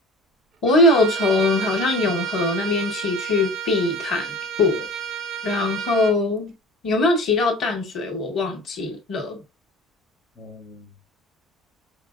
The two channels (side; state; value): both; normal; correlation 0.38